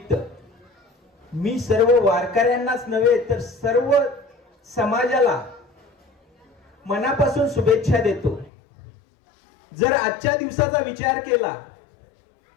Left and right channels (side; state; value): right; drops out; at 8.5 s